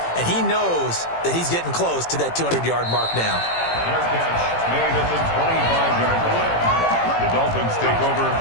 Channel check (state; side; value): late; right; 18 ms